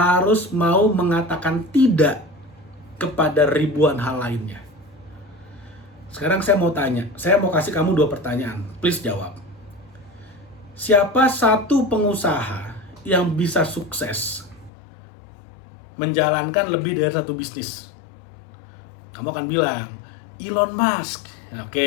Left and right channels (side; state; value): right; drops out; at 14.7 s